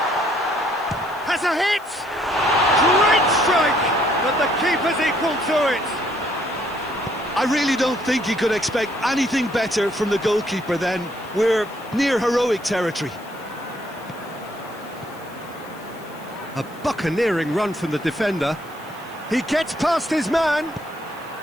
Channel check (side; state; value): left; noise; hiss, 24 dB below the sound